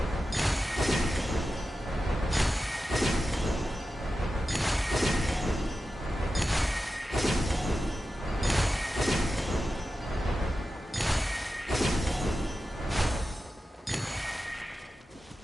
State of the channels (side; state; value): both; normal; correlation 0.92